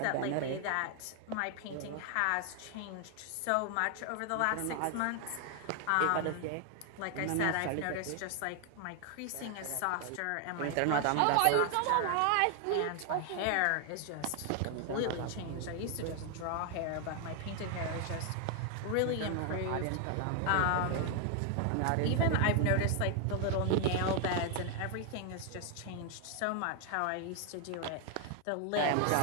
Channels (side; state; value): both; different; correlation 0.00